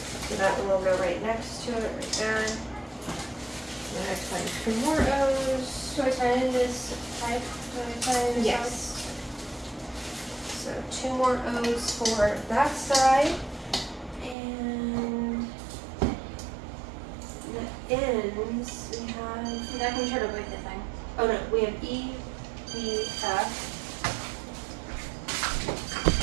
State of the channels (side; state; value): left; drops out; at 14.4 s